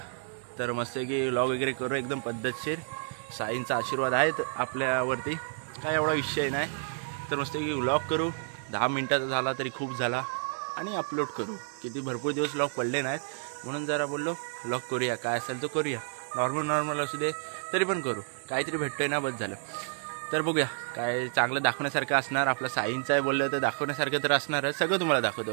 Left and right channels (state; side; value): silent; left; digital silence